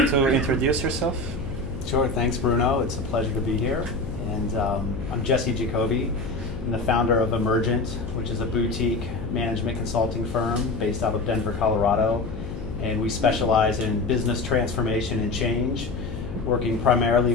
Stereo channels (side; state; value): left; noise; hum, 10 dB below the sound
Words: to introduce yourself? Sure, thanks Bruno. It's a pleasure to be here. And I'm Jesse Jacoby. I'm the founder of Emergent, which is a boutique management consulting firm based out of Denver, Colorado. And we specialize in business transformation and change, working primarily